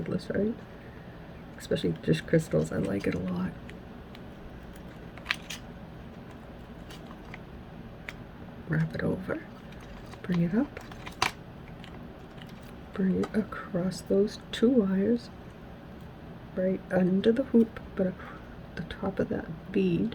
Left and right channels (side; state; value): both; identical; correlation 1.00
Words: right? Especially just crystals, I like it a lot. Wrap it over, bring it up, bring it across those 2 wires, right under the hoop, but the top of that bead.